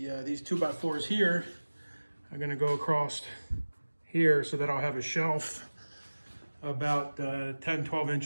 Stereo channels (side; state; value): both; inverted; correlation -1.00